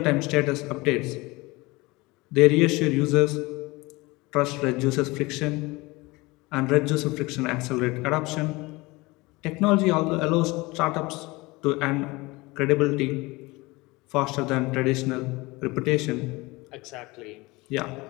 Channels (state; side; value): quieter; right; 22.8 dB